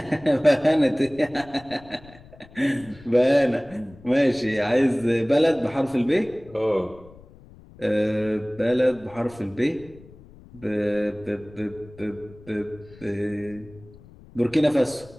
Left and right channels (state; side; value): noise; left; rumble, 22 dB below the sound